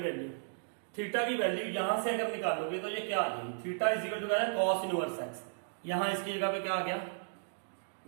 की वैल्यू यहां से अगर निकालोगे तो ये क्या आ जाएगी, थीटा इज इक्वल टू है कॉस इनवर्स एक्स, यहां इसकी जगह पे क्या आ गया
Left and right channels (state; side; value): silent; left; digital silence